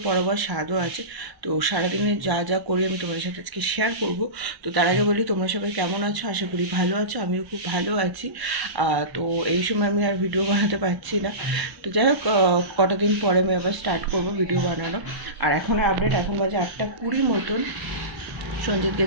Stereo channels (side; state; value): left; late; 1.0 ms